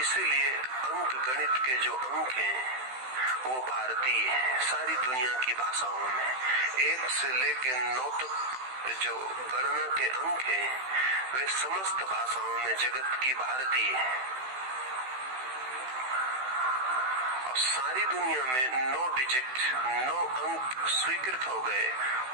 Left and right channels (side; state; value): left; late; 16 ms